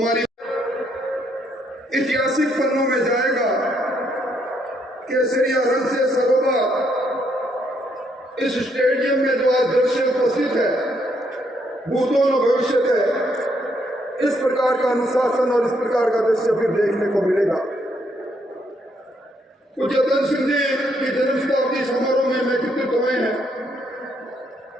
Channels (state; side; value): normal; both; correlation 0.73